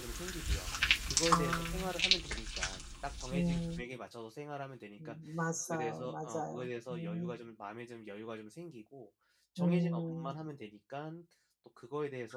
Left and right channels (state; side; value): identical; both; correlation 1.00